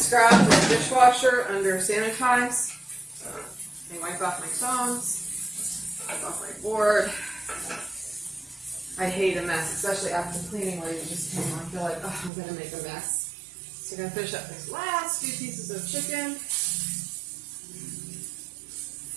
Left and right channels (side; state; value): left; drops out; at 12.3 s